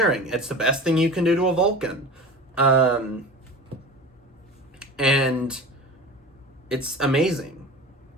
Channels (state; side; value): normal; both; correlation 0.34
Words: It's the best thing you can do to a Vulcan. And it's amazing.